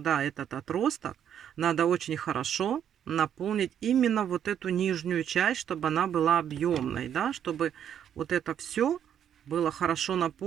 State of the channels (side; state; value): left; quieter; 9.3 dB